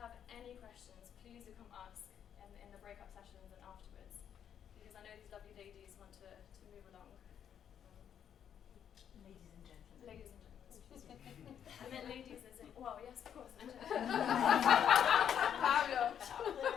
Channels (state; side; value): quieter; right; 8.9 dB